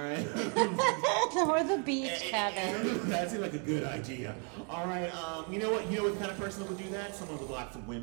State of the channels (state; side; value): quieter; left; 38.8 dB